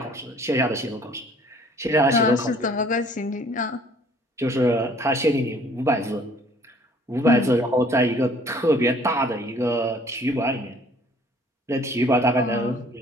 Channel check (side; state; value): both; normal; correlation 0.56